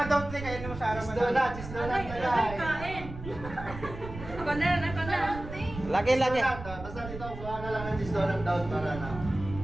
daw kayo mo sa araw Cheese donut, cheese donut na lang. Ako na, ako na. Lagi, lagi. Cheese donut, basta dito, kuha na lang ng cheese donut down para na.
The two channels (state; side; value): noise; right; rumble, 11 dB below the sound